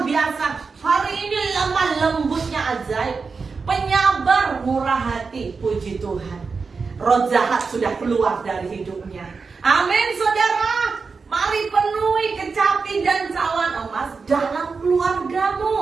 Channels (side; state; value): left; quieter; 4.8 dB